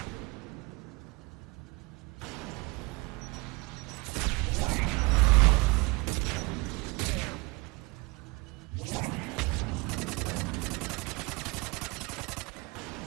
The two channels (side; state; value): left; quieter; 26.6 dB